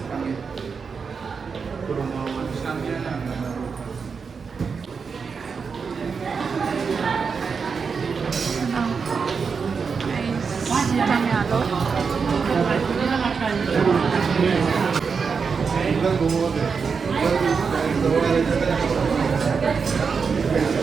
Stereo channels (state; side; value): quieter; left; 5.5 dB